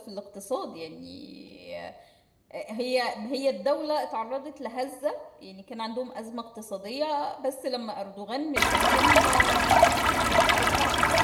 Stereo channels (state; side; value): identical; both; correlation 1.00